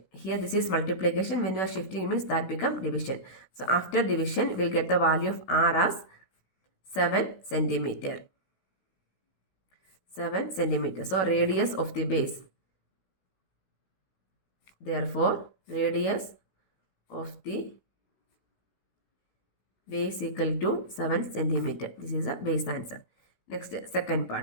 Here this is multiplication. When you are shifting means that become division. So after division we'll get the value of r as 7 centimeter. 7 centimeter. So radius of the base. Therefore radius of the base equal to 7 centimeter. This is a base answer. Next, second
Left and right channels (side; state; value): right; late; 16 ms